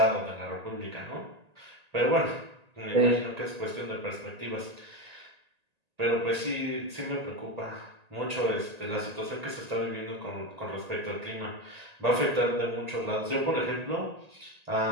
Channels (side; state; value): left; late; 1.9 ms